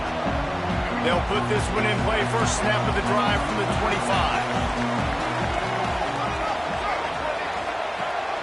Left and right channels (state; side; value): identical; both; correlation 1.00